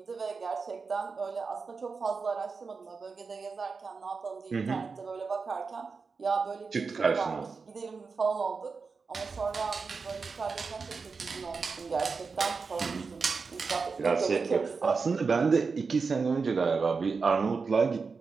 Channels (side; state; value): left; quieter; 4.8 dB